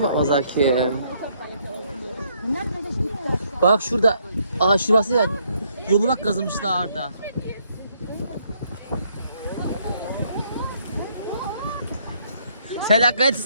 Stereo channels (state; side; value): inverted; both; correlation -0.70